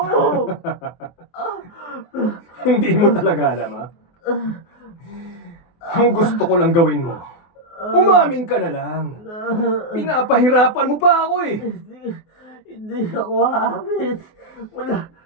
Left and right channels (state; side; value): late; right; 23 ms